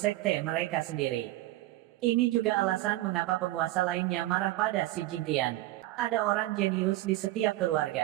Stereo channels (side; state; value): left; quieter; 16.6 dB